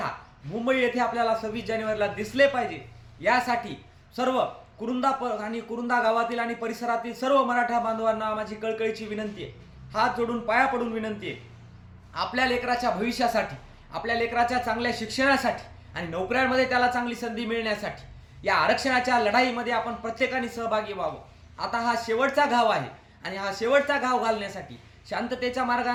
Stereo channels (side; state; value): both; identical; correlation 1.00